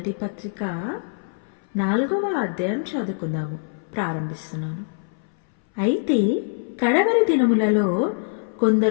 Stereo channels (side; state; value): right; silent; 61 dB below the other